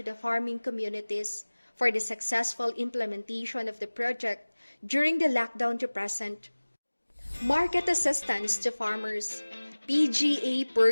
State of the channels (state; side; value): inverted; both; correlation -1.00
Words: the farming communities for the successful implementation of the project during the lockdown to present. Market assistance to farmers. PGA